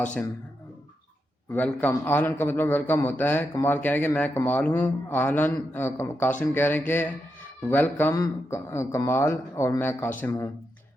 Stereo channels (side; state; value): both; normal; correlation 0.85